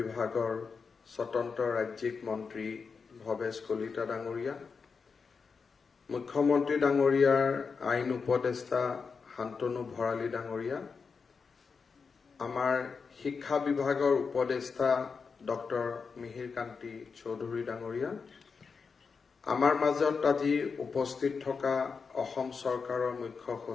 স্বতন্ত্ৰ ৰাজ্যিক মন্ত্ৰী ভৱেশ কলিতা ডাঙৰীয়া, মুখ্যমন্ত্ৰী ডাঙৰীয়াৰ আইন উপদেষ্টা শান্তনু ভৰালী ডাঙৰীয়া, আমাৰ শিক্ষা বিভাগৰ উপদেষ্টা ডক্টৰ মিহিৰ কান্তি চৌধুৰী ডাঙৰীয়া, আমাৰ মাজত আজি উপস্থিত থকা অসম চৰকাৰৰ মুখ্য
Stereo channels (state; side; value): quieter; right; 5.3 dB